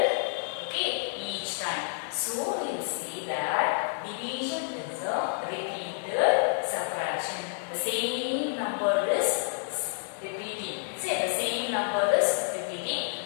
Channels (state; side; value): silent; right; 58 dB below the other